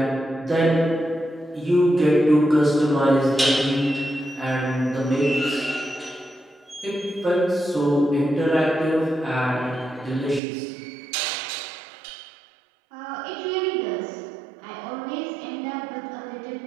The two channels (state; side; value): drops out; left; at 10.4 s